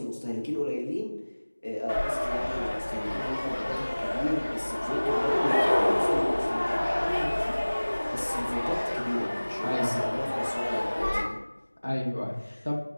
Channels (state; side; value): inverted; both; correlation -1.00